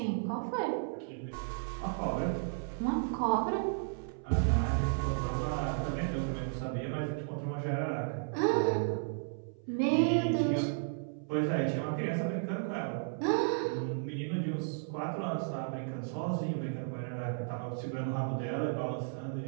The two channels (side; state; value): left; silent; 55 dB below the other